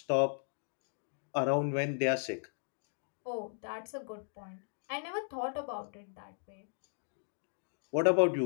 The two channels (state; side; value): silent; right; digital silence